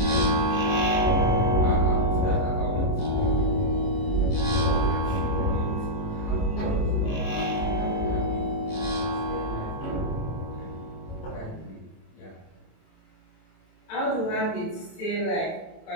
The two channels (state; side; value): late; right; 27 ms